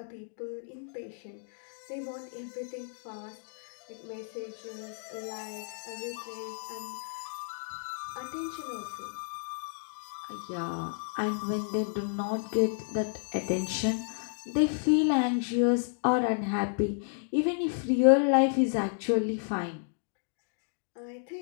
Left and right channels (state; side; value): silent; right; digital silence